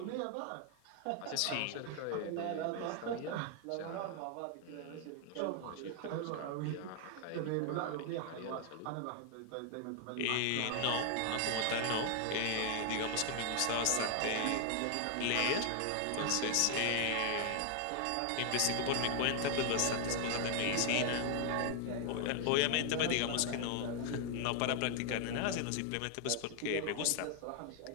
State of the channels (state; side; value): different; both; correlation 0.00